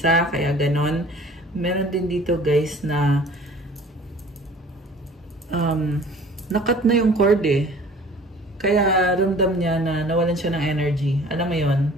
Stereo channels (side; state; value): both; normal; correlation 0.48